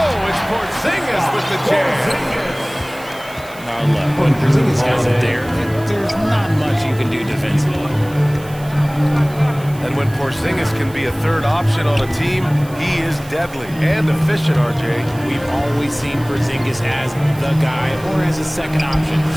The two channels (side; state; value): right; noise; hiss, 20 dB below the sound